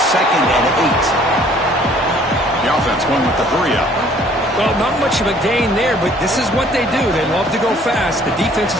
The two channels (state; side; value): normal; both; correlation 0.57